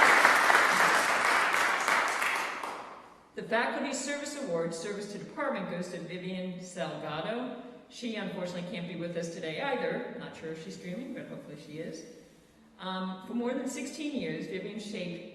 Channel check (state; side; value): identical; both; correlation 1.00